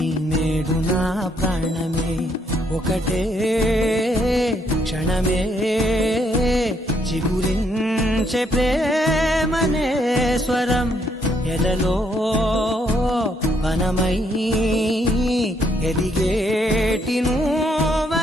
నేడు నా ప్రాణమే. ఒకటే క్షణమే చిగురించే ప్రేమనే స్వరం ఎదలో వనమై ఎదిగేటి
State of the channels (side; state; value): both; normal; correlation 0.72